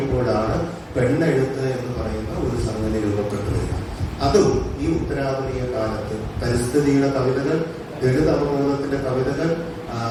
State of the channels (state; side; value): identical; both; correlation 1.00